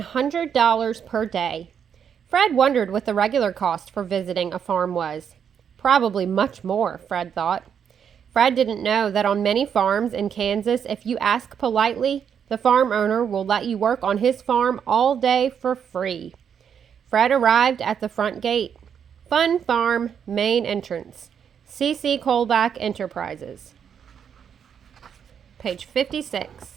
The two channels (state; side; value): quieter; left; 7.8 dB